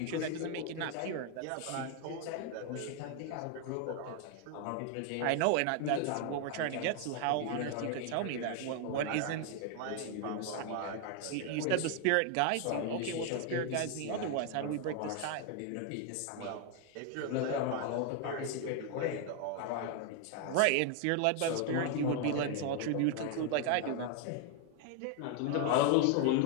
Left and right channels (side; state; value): both; different; correlation 0.00